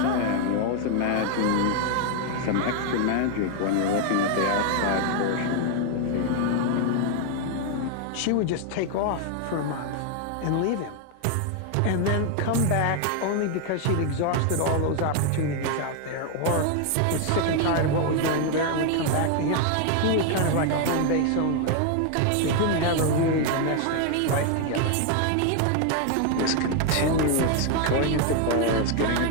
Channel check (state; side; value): different; both; correlation 0.00